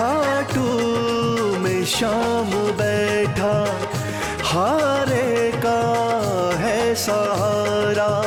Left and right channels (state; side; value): identical; both; correlation 1.00